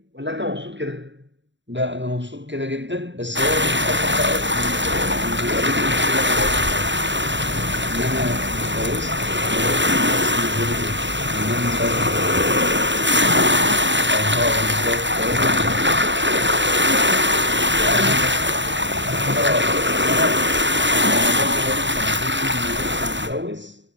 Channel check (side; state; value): left; late; 0.53 ms